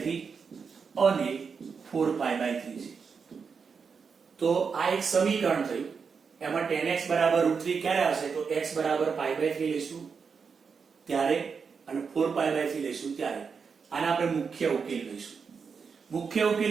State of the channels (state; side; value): quieter; left; 5.7 dB